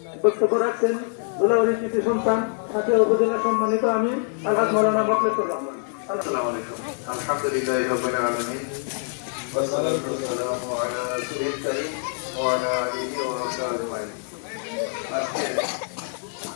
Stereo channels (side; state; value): right; silent; 58 dB below the other